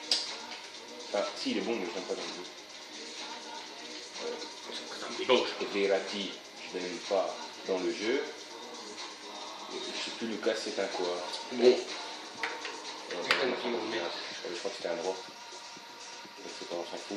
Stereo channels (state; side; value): identical; both; correlation 1.00